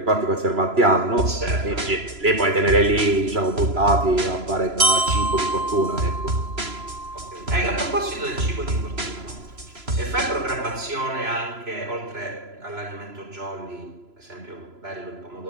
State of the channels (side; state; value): left; late; 3.0 ms